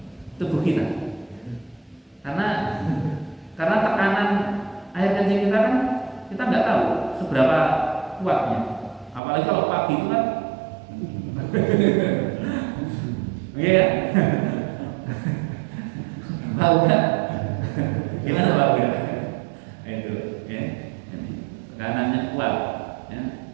tubuh kita, karena tekanan air kencing kita kan kita nggak tahu seberapa kuatnya, apalagi kalau pagi itu kan, iya ya, tahu kan? Gimana Pak? Itu, ya, tekanannya kuat, ya.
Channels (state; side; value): drops out; left; at 9.2 s